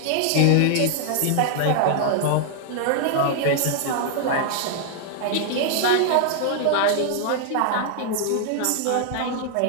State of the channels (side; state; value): both; different; correlation 0.00